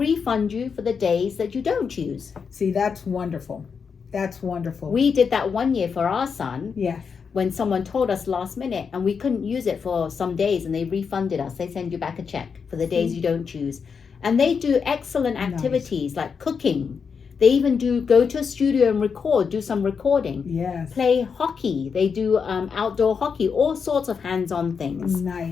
you for the days that you don't use. See, that's wonderful. That's wonderful. We did that one year for our son. Yes. When someone told us last minute and we couldn't use it for some days, and they refunded us. They send you back a check for the days you don't choose. And they do excellent activities like cooking. They even go to a studio and do some recording. Yes. Play hockey. They do outdoor hockey, all sorts of hands-on things.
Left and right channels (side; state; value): right; quieter; 6.0 dB